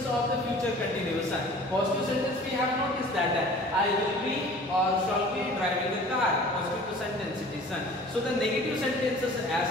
of the future continuous, son. Positive sentence we have noticed that I will be or shall be driving a car. Positive sentence it is, son. So the negative sentences, as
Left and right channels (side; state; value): both; normal; correlation 0.46